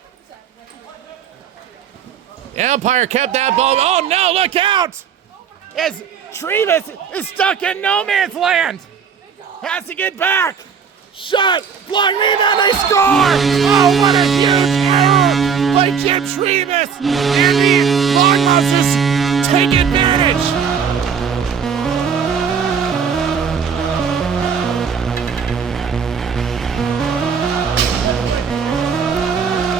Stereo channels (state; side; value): quieter; left; 6.8 dB